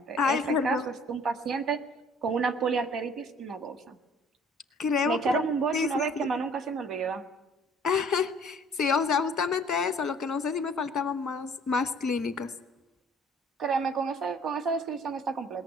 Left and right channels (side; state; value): both; normal; correlation 0.54